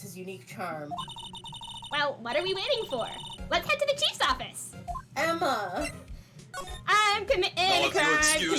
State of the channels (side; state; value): both; identical; correlation 1.00